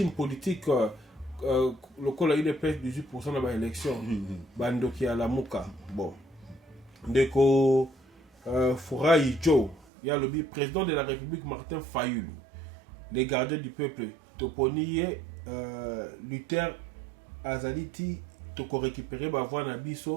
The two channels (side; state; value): left; drops out; at 9.9 s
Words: politique le col UDPS 18% dans l'élection bandoki à la muka bon ndeko Furayi Joe ya lobi président de la République Martin Fayulu les gardiens du peuple toponiye Luther Azaliti toko récupérer ba voix na